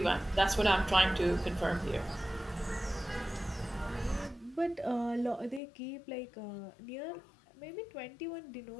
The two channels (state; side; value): drops out; right; at 5.6 s